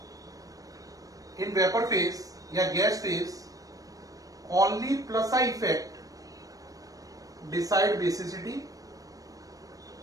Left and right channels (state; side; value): late; left; 0.17 ms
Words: इन वेपर फेज या gas phase, only plus I effect decide basicity.